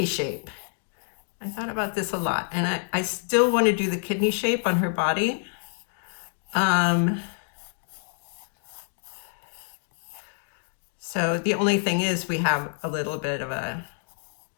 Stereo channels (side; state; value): right; silent; 57 dB below the other